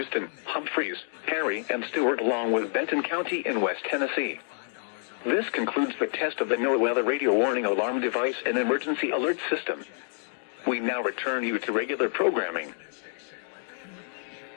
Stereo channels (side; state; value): right; silent; digital silence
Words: Humphreys, Perry, and Stewart, along with Benton County in West Tennessee. This concludes the test of the NOAA radio warning alarm device and emergency alert system. We now return you to regular programming.